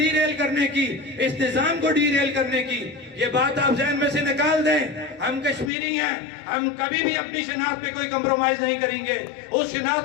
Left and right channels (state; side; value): drops out; right; at 5.7 s